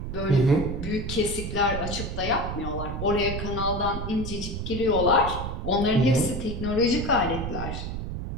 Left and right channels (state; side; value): noise; right; rumble, 5 dB below the sound